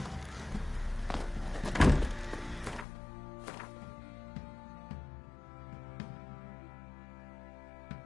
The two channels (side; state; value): right; drops out; at 2.9 s